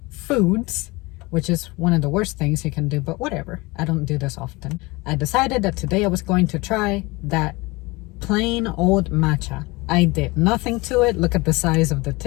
foods, which is one of the worst things you can do, but whatever. I don't do this often. I decided that today I was going to try that plain old matcha. I did nothing to it. Look at the size of the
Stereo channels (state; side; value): quieter; right; 23.5 dB